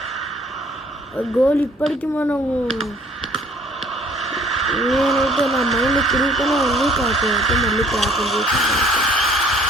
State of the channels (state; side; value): normal; both; correlation 0.57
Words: గోల్ ఇప్పటికీ మనము నేనైతే నా మైండ్ తిరుగుతూనే ఉంది. కాకపోతే మళ్ళీ క్యాప్టెన్ చేసి